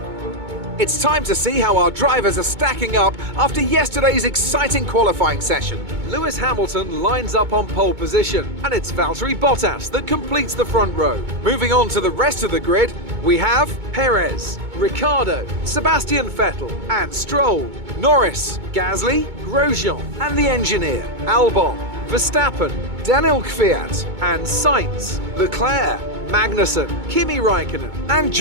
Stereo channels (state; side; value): late; left; 2.2 ms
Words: It's time to see how our drivers are stacking up after yesterday's exciting qualifying session. Lewis Hamilton lines up on pole position, and it's Valtteri Bottas that completes the front row. Moving on to the rest of the grid, we have Perez, Ricciardo, Sebastian Vettel and Stroll, Norris, Gasly, Grosjean and the engineer, Albon, Verstappen, Daniel Kvyat and Sainz, Leclerc, Magnussen, Kimi Raikkonen and